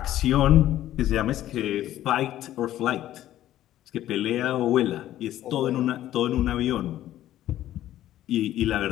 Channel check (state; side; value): quieter; right; 13.2 dB